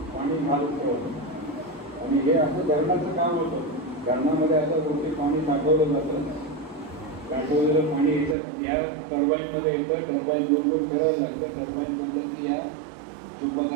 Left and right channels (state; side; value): drops out; left; at 8.3 s